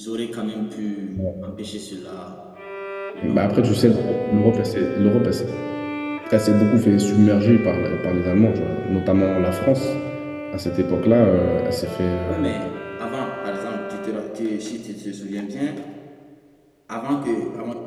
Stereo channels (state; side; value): identical; both; correlation 1.00